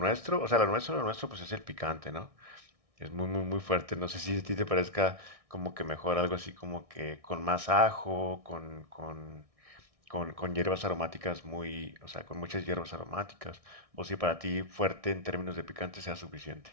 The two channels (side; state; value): left; late; 1.6 ms